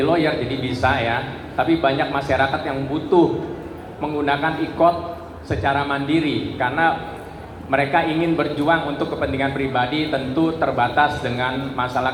lawyer jadi bisa ya, tapi banyak masyarakat yang butuh menggunakan IQOT secara mandiri karena mereka ingin berjuang untuk kepentingan pribadi, tentu terbatas dengan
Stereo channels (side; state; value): both; identical; correlation 1.00